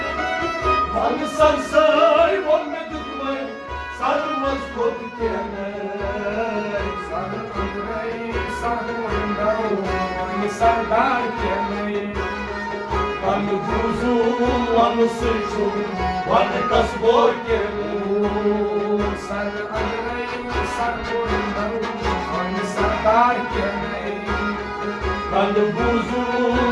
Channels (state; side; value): identical; both; correlation 1.00